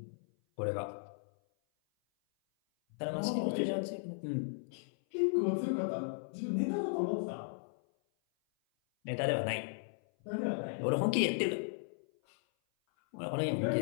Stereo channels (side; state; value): right; silent; 54 dB below the other